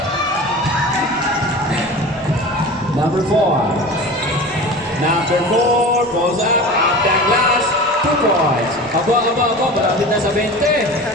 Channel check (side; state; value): both; normal; correlation 0.34